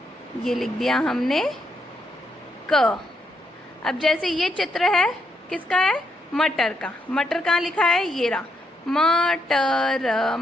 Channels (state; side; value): normal; both; correlation 0.78